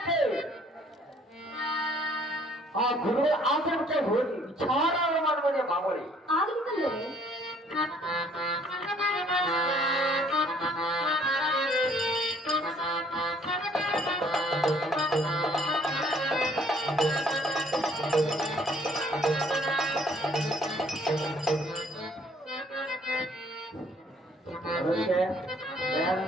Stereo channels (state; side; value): normal; both; correlation 0.60